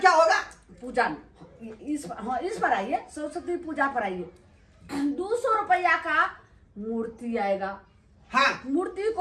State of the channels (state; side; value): identical; both; correlation 1.00